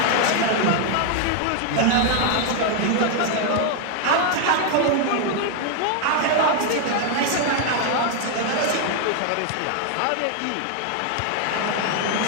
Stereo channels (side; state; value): both; different; correlation 0.00